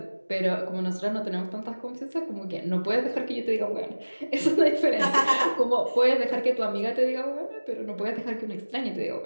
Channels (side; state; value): both; inverted; correlation -1.00